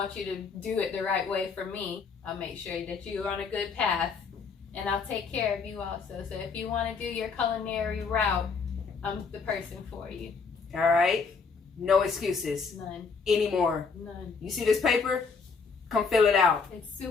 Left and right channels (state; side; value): quieter; right; 5.2 dB